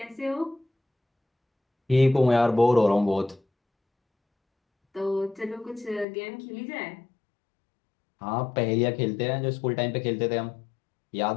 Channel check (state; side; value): drops out; right; at 6.1 s